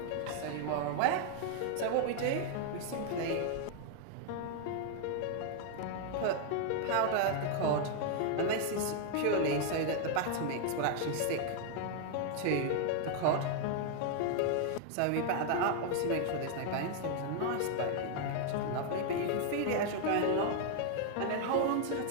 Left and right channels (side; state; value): both; different; correlation 0.00